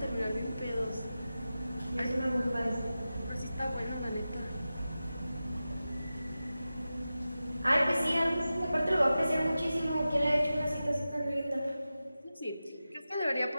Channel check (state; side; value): inverted; both; correlation -0.94